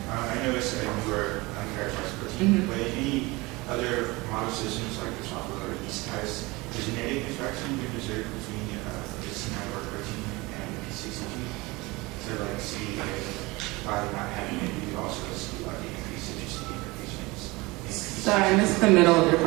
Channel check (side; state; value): left; quieter; 23.0 dB